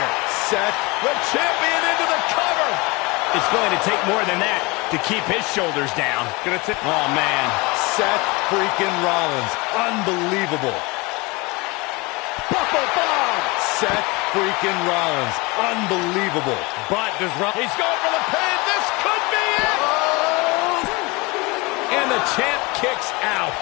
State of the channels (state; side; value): quieter; right; 25.4 dB